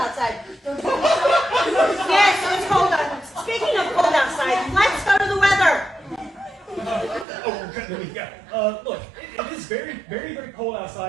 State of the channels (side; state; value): left; drops out; at 7.2 s